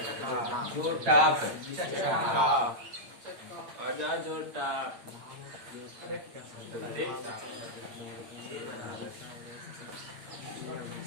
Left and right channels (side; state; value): left; late; 8.7 ms